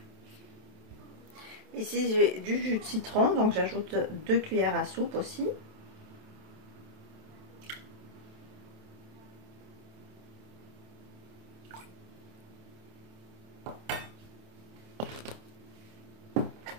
Ici, j'ai du jus de citron, donc j'ajoute 2 cuillères à soupe aussi.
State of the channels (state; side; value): late; left; 27 ms